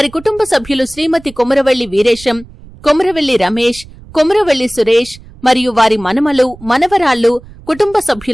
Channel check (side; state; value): right; noise; rumble, 20 dB below the sound